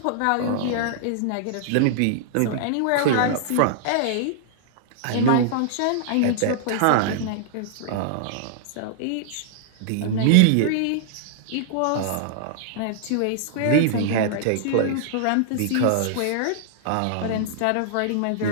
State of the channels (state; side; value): different; both; correlation -0.01